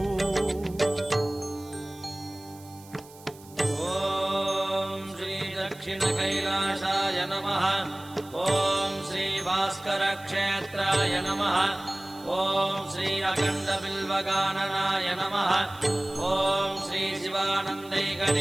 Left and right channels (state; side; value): noise; right; hiss, 22 dB below the sound